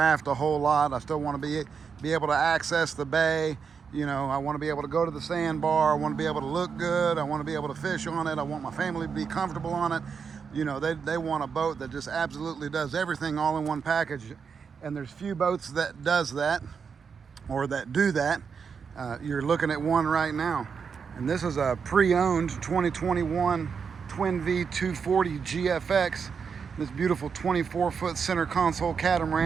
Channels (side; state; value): left; quieter; 6.1 dB